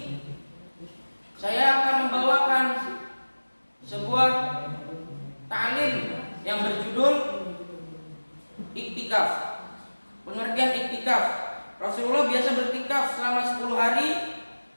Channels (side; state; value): both; inverted; correlation -1.00